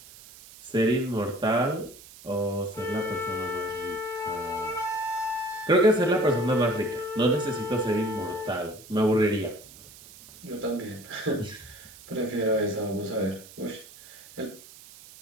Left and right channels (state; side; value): noise; right; hiss, 19 dB below the sound